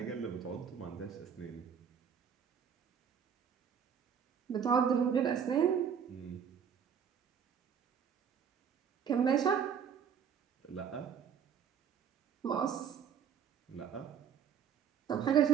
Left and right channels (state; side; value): quieter; left; 7.8 dB